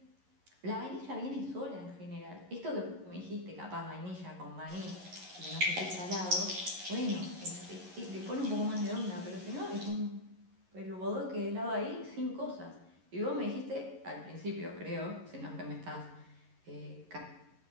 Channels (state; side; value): late; left; 11 ms